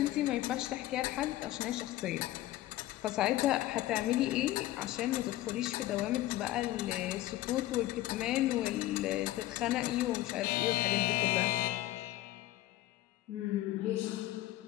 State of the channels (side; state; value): right; quieter; 15.7 dB